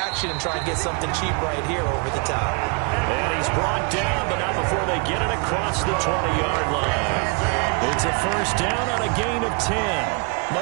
and try and get something cheap right here over the top. And he's brought down, but not before they get it across the 20-yard line. It's a first down on a gain of 10.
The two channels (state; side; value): quieter; left; 32.7 dB